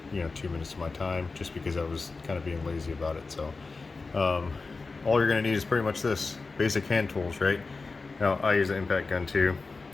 2 minutes to my time just because I was kind of being lazy about it. So all you're going to need is pretty much this basic hand tools, right? Now I use an impact gun too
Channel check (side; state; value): right; quieter; 4.0 dB